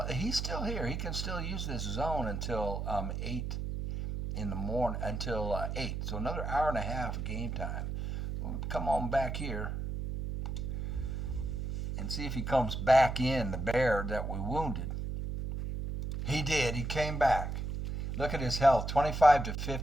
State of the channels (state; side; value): noise; right; hum, 3 dB below the sound